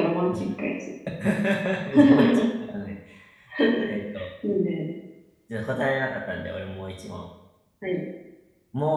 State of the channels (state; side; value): identical; both; correlation 1.00